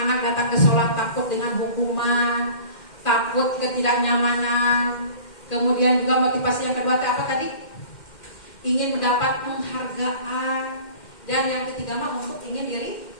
datang ke sholat takut dengan hukuman, takut ketidaknyamanan. Kemudian juga motivasi yang kedua apa tadi? Ingin mendapat penghargaan. Dan yang ketiga mah untuk ingin diri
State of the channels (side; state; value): right; late; 2.1 ms